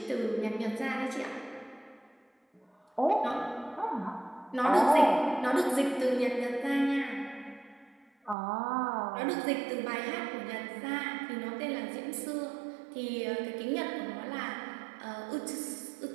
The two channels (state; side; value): drops out; left; at 8.3 s